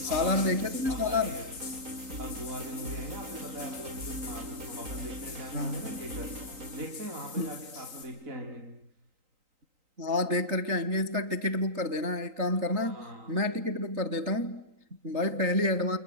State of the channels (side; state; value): left; late; 3.9 ms